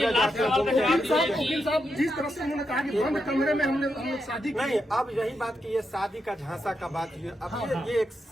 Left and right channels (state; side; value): normal; both; correlation 0.84